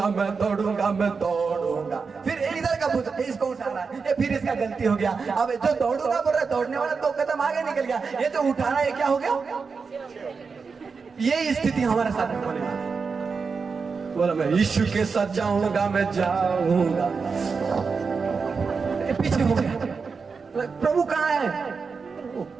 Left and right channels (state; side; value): quieter; left; 5.1 dB